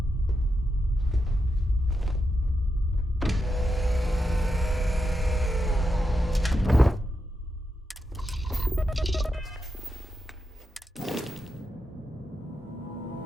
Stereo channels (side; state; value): both; normal; correlation 0.85